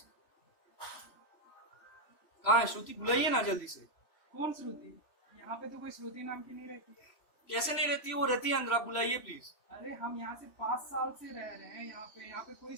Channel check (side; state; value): right; late; 3.0 ms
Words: कहाँ है श्रुति? बुलाइए ना जल्दी से। कौन श्रुति? यहाँ पे तो कोई श्रुति नाम की नहीं रहती। कैसे नहीं रहती है? वो रहती है अंदर, आप बुलाइए प्लीज। अरे हम यहाँ से 5 साल से रह रहे हैं, यहाँ पे कोई